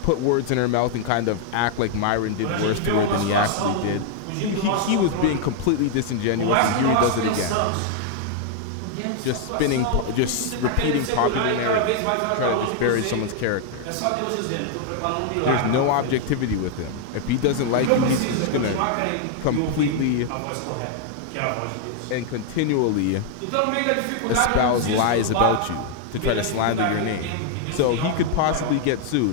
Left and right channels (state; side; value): different; both; correlation 0.00